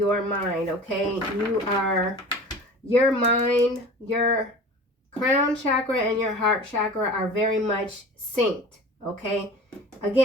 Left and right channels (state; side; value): normal; both; correlation 0.39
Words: mind, okay? Your mind, your crown chakra and your heart chakra are very much synced, okay?